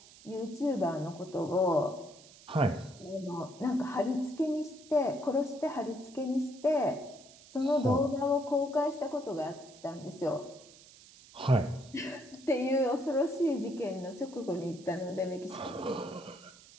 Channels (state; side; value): noise; right; hiss, 22 dB below the sound